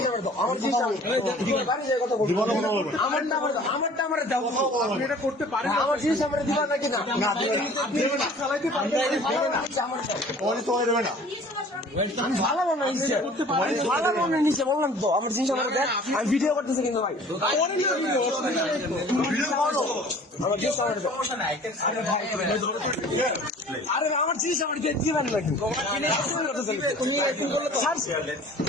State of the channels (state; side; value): normal; both; correlation 0.48